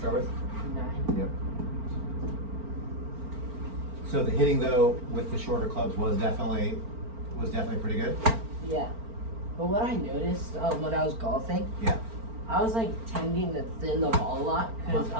with? 9. Yep. So the hitting though with the shorter clubs was definitely pretty good. Yeah. But what I noticed when I was golfing, Yeah. I was like tending to thin the ball a lot because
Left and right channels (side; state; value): left; late; 4.4 ms